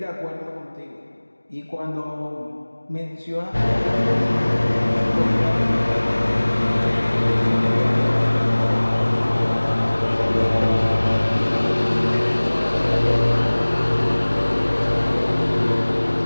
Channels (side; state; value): both; inverted; correlation -1.00